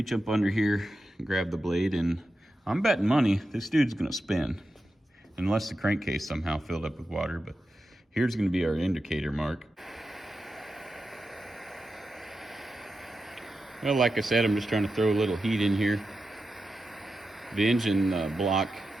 up under here and grab the blade. And I'm betting money this dude's going to spin. Unless the crankcase somehow filled up with water. But here's going to be our indicator mark. Well, like I said, I'm just trying to throw a little heat in here. The engine block,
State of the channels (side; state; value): both; normal; correlation 0.90